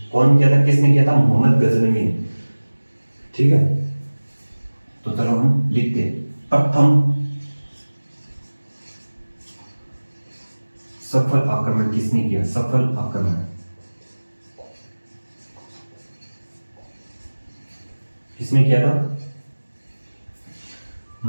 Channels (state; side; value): inverted; both; correlation -1.00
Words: कौन किया था, किसने किया था, मोहम्मद गजनवी, ठीक है। तो चलो हम लिखते हैं, प्रथम सफल आक्रमण किसने किया, सफल आक्रमण किसने किया था,